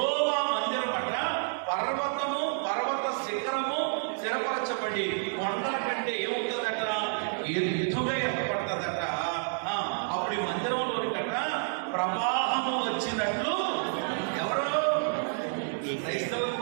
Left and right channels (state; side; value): silent; left; digital silence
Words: మందిరం అంట పర్వత శిఖరము స్థిరపరచబడి కొండల కంటే ఏమవుతుందట, ఎదుగా ఏర్పడుతుందట. అప్పుడు ఈ మందిరంలోని కంట ప్రవాహము వచ్చినట్లు, ఎవరో క్రైస్తవులు